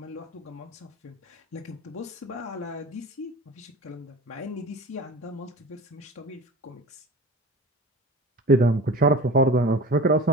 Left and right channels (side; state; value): both; normal; correlation 0.37